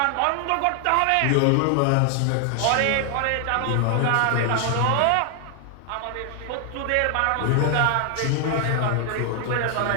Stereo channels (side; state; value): both; different; correlation 0.00